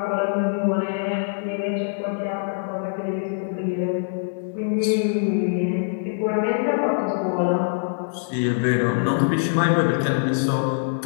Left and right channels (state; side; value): silent; right; digital silence